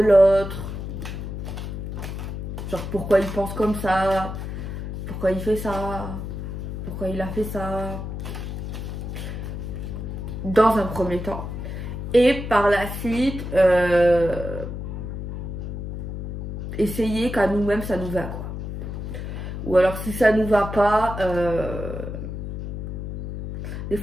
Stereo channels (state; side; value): noise; left; hum, 6 dB below the sound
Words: l'autre. Genre pourquoi il pense comme ça, pourquoi il fait ça, pourquoi il a fait ça. Dans un premier temps. Et par la suite, essayer qu'à nous-mêmes ça nous va, quoi. Ou alors si ça nous va pas, des